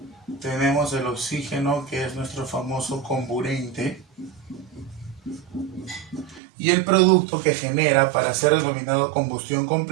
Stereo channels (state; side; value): drops out; left; at 6.4 s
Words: Tenemos el oxígeno, que es nuestro famoso comburente. Y el producto que genera para ser denominado combustión